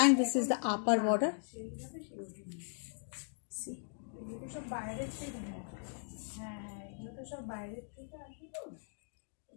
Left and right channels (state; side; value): silent; right; digital silence